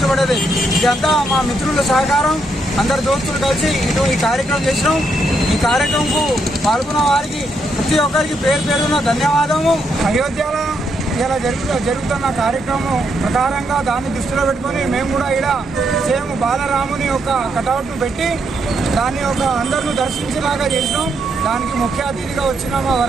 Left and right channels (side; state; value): both; normal; correlation 0.78